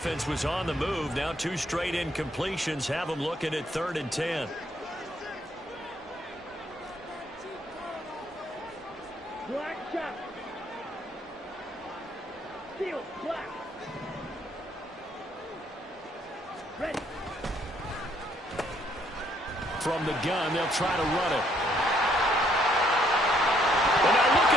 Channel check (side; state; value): both; normal; correlation 0.68